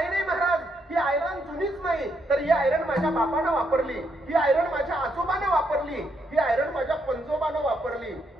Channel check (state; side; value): normal; both; correlation 0.76